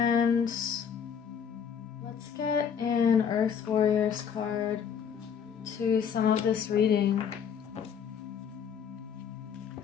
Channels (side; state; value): right; quieter; 7.5 dB